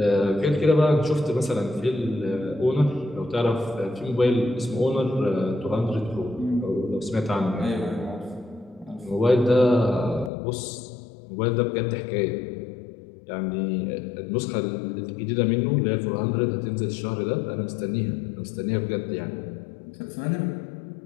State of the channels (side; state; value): right; drops out; at 10.3 s